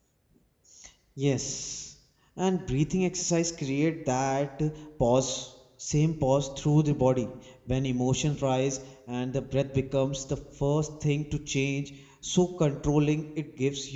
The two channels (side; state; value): both; identical; correlation 1.00